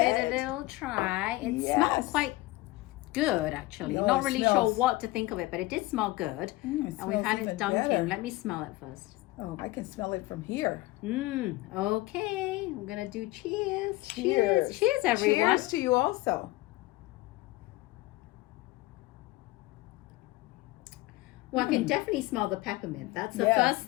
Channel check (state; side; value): quieter; right; 19.5 dB